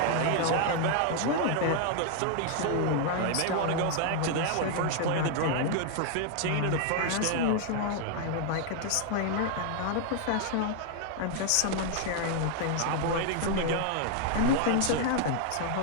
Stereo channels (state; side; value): different; both; correlation 0.00